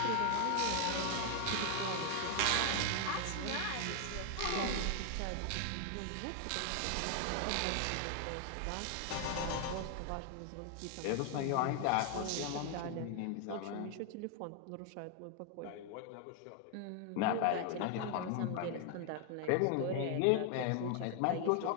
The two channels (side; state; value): both; different; correlation 0.00